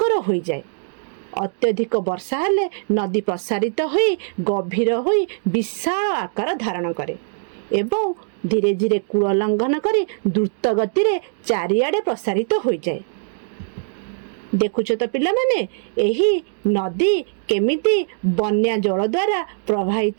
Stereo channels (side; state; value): left; silent; digital silence